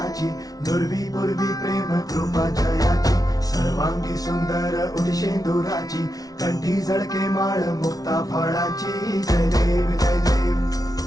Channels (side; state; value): right; late; 0.18 ms